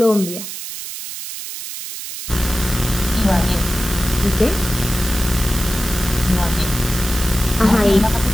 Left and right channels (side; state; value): right; noise; hiss, 9 dB below the sound